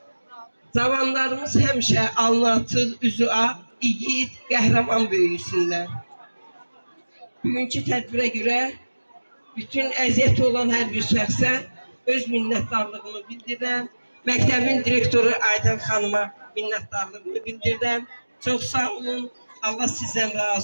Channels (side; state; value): both; inverted; correlation -1.00